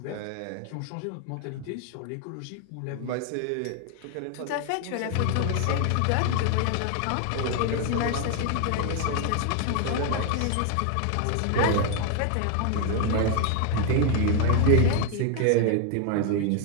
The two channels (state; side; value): different; both; correlation 0.01